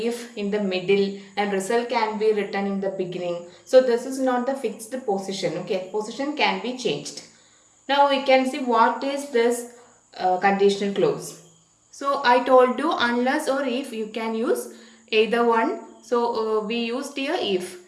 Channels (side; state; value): both; identical; correlation 1.00